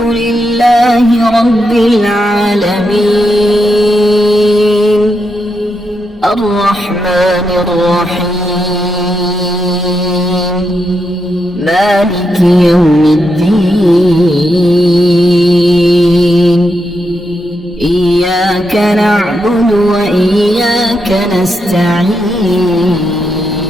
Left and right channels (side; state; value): both; normal; correlation 0.84